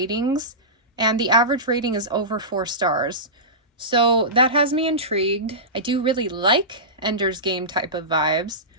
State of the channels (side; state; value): both; normal; correlation -0.19